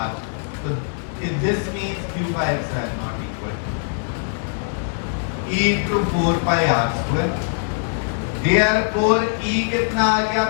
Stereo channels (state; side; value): silent; right; digital silence